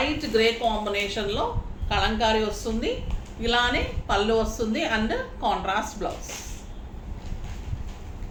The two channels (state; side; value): identical; both; correlation 1.00